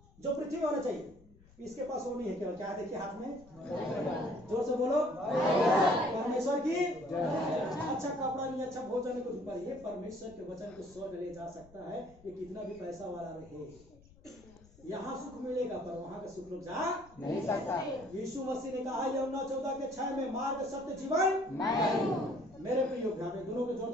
जो पृथ्वी में होना चाहिए। इसके पास वो नहीं है। केवल क्या देखिए हाथ में, जोर से बोलो, परमेश्वर की। अच्छा कपड़ा नहीं, अच्छा भोजन नहीं, कुछ ऊपर। ये परमेश्वर के वचन को स्वर्ग ले जा सकता है, ये कितना भी पैसा वाला रहे। यहाँ सुख मिलेगा पर वहां का सुख लोग जा नहीं सकता। यीशु मसीह ने कहा यूहन्ना 14:6 में, मार्ग सत्य जीवन मेरे प्रियो, दोनों के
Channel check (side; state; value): left; noise; rumble, 25 dB below the sound